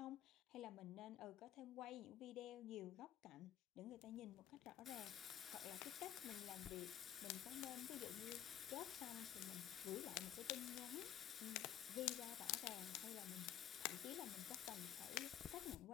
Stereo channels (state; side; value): quieter; right; 11.6 dB